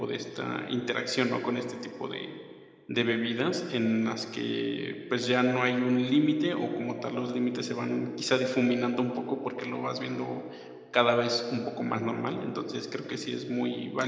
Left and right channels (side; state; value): both; identical; correlation 1.00